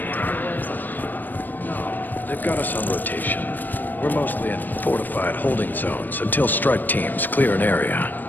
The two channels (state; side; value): late; right; 0.090 ms